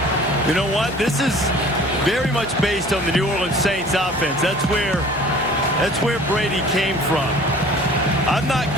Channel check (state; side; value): noise; left; hum, 20 dB below the sound